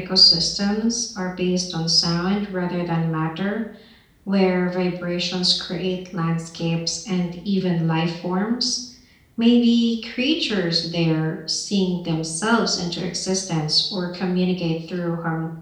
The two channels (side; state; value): both; identical; correlation 1.00